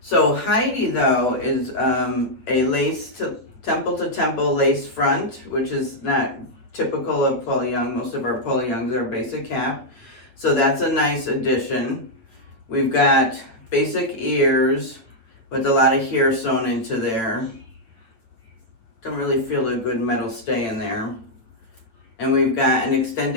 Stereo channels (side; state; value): right; late; 8.6 ms